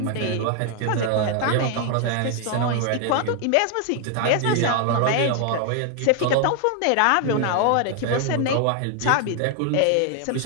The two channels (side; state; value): both; different; correlation 0.00